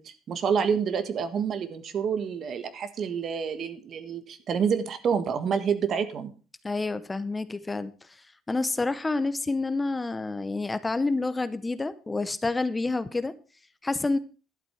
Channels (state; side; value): normal; both; correlation 0.82